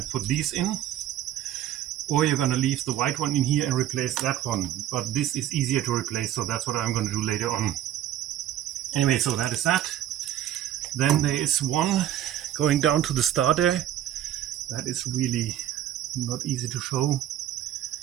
put these in, or you're going to leave the white one in here and replace that one. But this is easier to replace, so that's what I'm going to do later on. Anyway, so that is that. Then there is one going down to the starter. That is really not easy to show.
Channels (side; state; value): left; quieter; 11.8 dB